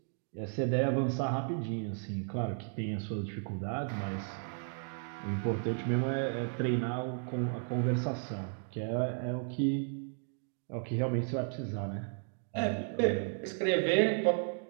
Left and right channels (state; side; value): silent; left; 55 dB below the other